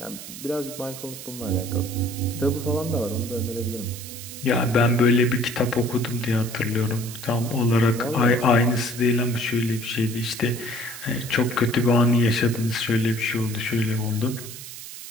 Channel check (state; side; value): noise; right; hiss, 12 dB below the sound